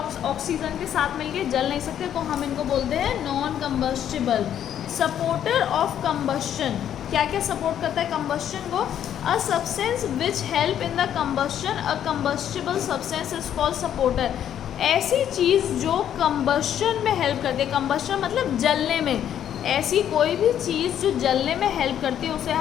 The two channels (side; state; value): right; quieter; 10.0 dB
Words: के साथ मिलके जल नहीं सकते, तो हम इनको बोलते हैं non combustible. Supporter of combustion, क्या क्या सपोर्ट करता है कंबस्शन को? A substance which help in the combustion, a combustible substance is called supporter. ऐसी चीज़ जो कंबस्शन में हेल्प करती है, कंबस्शन मतलब जलने में, ऐसी कोई भी चीज़ जो जलने में हेल्प करती है उसे